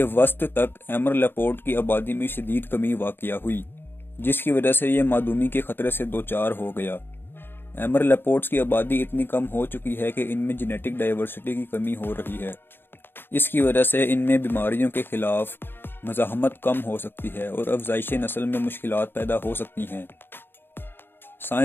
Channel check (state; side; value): late; right; 0.10 ms